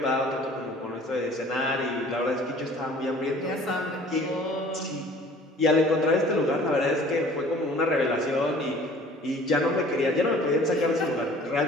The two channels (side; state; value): both; normal; correlation 0.50